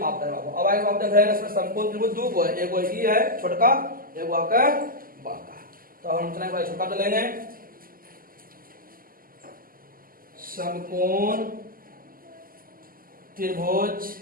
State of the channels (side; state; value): left; late; 0.42 ms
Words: करें बाबू। अब आगे आप देख रहे हैं इसमें समकोण त्रिभुज दो को है, एक वो ई है छोटका, एक वो आपका बड़का। तो हम चलेंगे छोटा तो लेंगे समकोण त्रिभुज